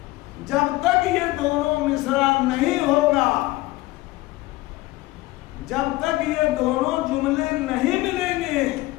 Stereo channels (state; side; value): quieter; right; 19.2 dB